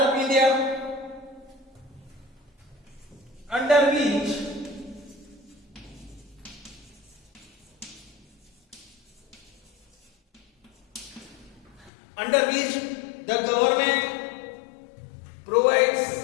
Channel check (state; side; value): drops out; right; at 11.9 s